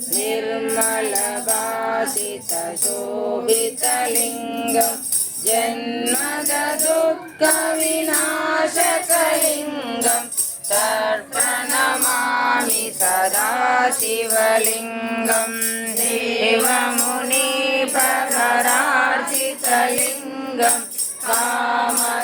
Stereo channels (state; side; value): identical; both; correlation 1.00